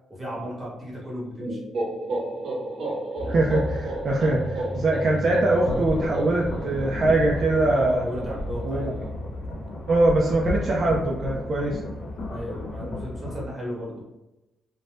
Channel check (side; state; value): both; normal; correlation 0.83